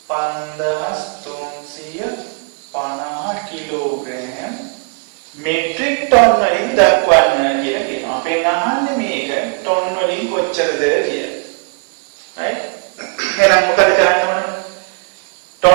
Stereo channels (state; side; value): quieter; left; 36.6 dB